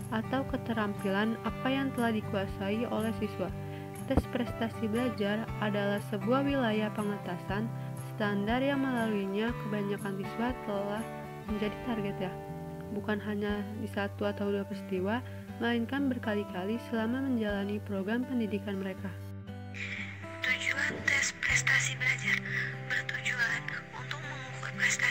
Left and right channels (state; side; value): identical; both; correlation 1.00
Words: atau keterampilan apa yang telah dikuasai oleh siswa. Tes prestasi belajar adalah sebuah wilayah pengetasan standar yang melaluinya kebanyakan siswa telah menjadi target bukan hanya di satu atau dua peristiwa, melainkan berkali-kali selama menjalani program pendidikan mereka. Tujuan tes prestasi belajar bertujuan untuk mengukur